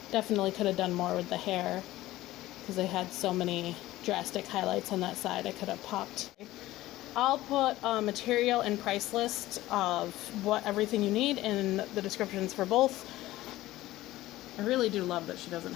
Definitely could have done more with the hair because I had so many drastic highlights on that side. I could have popped. I'll put a material and price list of what everything you need in the descriptions for both. I really do love that she doesn't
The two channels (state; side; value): quieter; right; 16.4 dB